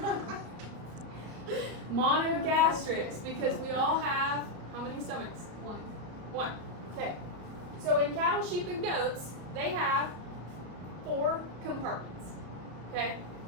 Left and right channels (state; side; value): late; left; 34 ms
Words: monogastrics because we all have how many stomachs? One. Okay. So in cattle, sheep, and goats, they have 4 compartments. Okay.